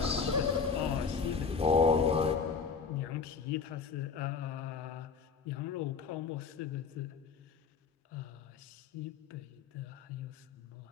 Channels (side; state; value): right; quieter; 5.5 dB